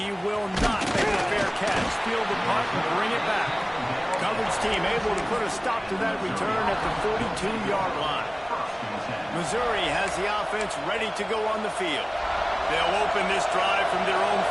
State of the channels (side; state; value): both; identical; correlation 1.00